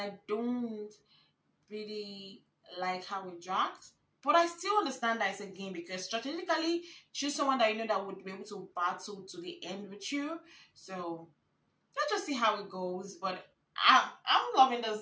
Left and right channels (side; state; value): both; identical; correlation 1.00